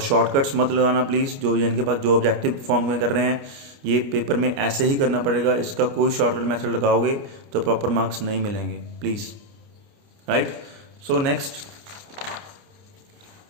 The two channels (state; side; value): late; left; 29 ms